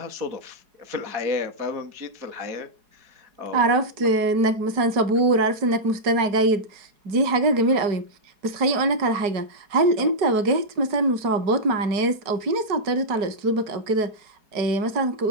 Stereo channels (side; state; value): left; late; 4.7 ms